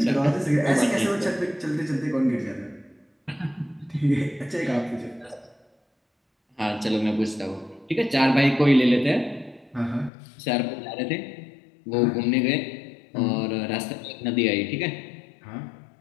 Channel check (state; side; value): drops out; right; at 10.1 s